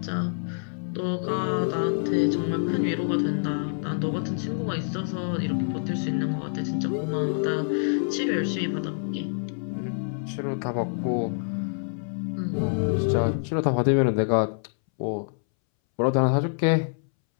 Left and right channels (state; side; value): silent; right; 61 dB below the other